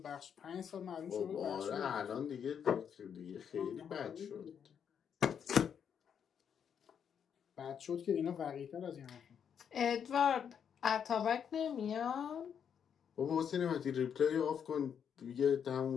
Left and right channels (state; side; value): quieter; right; 7.8 dB